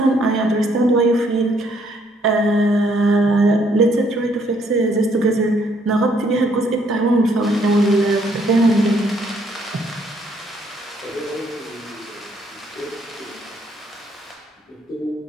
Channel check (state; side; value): normal; both; correlation 0.68